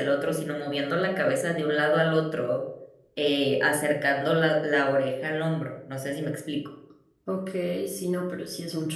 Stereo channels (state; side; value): identical; both; correlation 1.00